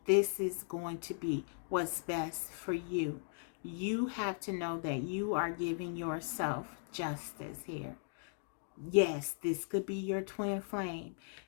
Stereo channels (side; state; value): right; silent; digital silence